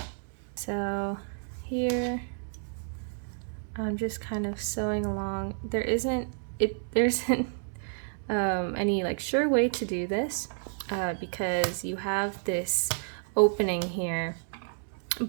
So here I'm just kind of sewing along. There isn't any like sure way to do this, because you have this opening here,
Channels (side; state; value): left; silent; 58 dB below the other